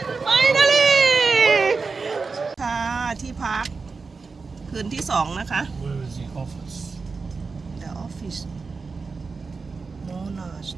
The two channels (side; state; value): left; quieter; 4.5 dB